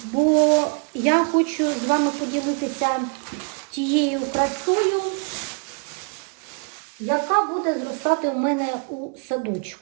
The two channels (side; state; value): left; quieter; 39.6 dB